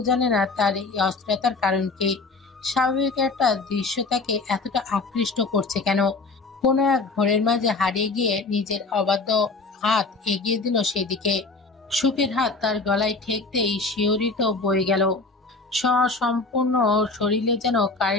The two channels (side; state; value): right; quieter; 3.7 dB